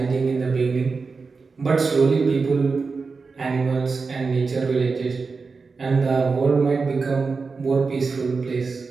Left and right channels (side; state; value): left; quieter; 4.5 dB